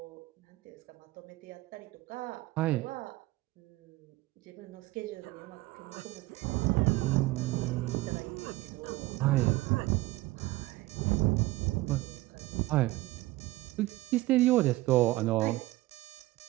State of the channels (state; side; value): quieter; left; 18.8 dB